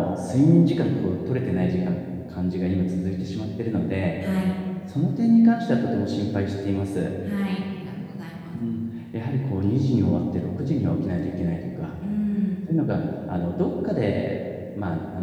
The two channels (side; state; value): both; identical; correlation 1.00